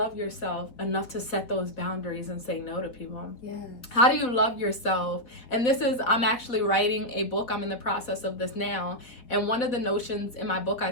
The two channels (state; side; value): late; right; 3.9 ms